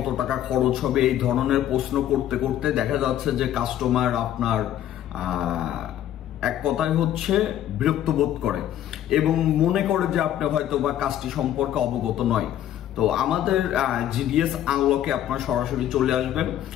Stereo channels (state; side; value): quieter; right; 11.6 dB